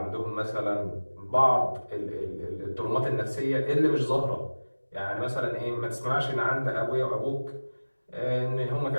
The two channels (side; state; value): both; inverted; correlation -1.00